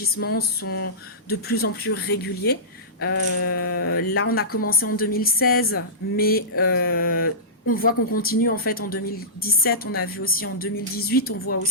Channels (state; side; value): normal; both; correlation -0.19